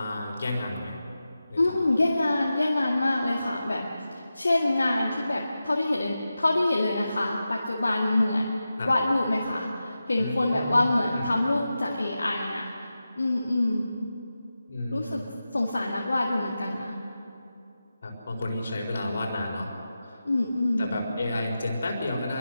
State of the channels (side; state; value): both; inverted; correlation -0.92